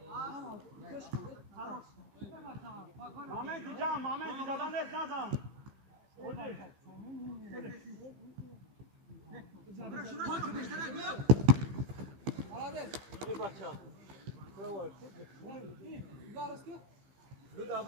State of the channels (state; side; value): late; left; 15 ms